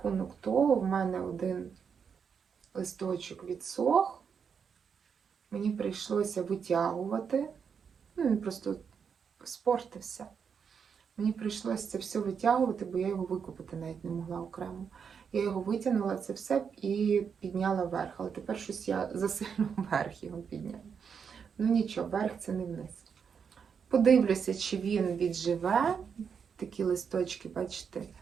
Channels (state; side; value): quieter; left; 6.7 dB